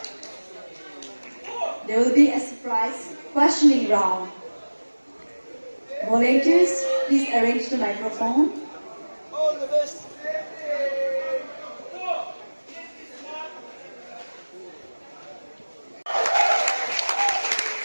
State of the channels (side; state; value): both; inverted; correlation -1.00